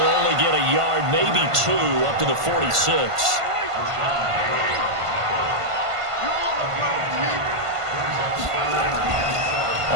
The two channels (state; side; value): late; left; 1.5 ms